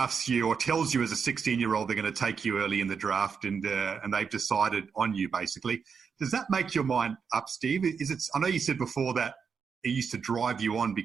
you or tells you as a 16-year-old they're going to take you early in the draft, and they've decided on you basically. Does that make your mind up, Steve? I know you said before that it used to drive you on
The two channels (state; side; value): quieter; left; 6.1 dB